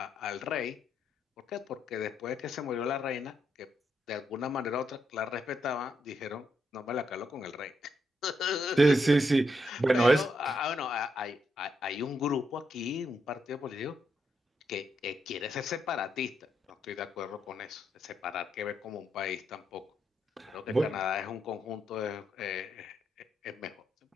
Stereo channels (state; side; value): normal; both; correlation 0.80